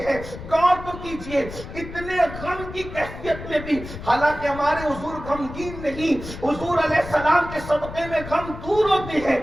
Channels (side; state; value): left; noise; rumble, 12 dB below the sound